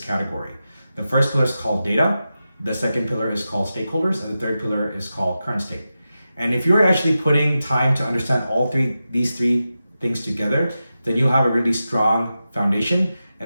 The first pillar is called data, the second pillar is called stakeholders, and the third pillar is called current state. And if you're actually putting time to understand these three things together, then you'll have a really strong foundation,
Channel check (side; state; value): both; inverted; correlation -0.91